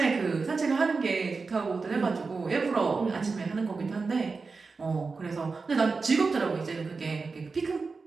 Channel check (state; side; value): quieter; left; 4.4 dB